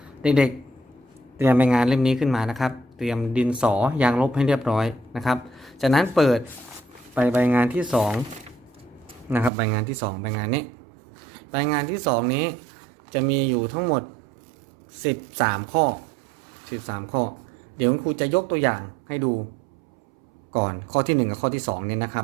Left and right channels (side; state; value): left; drops out; at 9.5 s